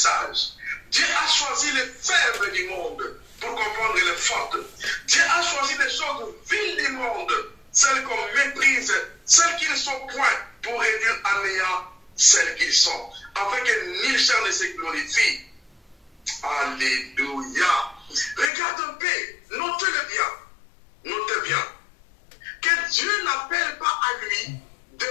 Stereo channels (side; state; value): right; drops out; at 18.5 s